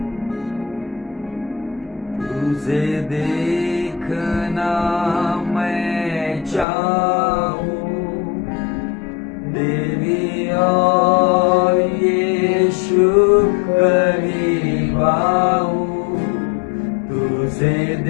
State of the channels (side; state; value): right; drops out; at 6.7 s